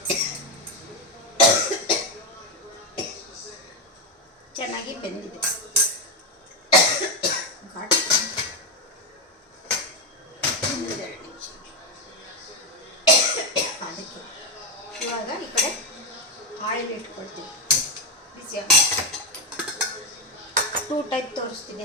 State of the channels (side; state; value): both; normal; correlation 0.08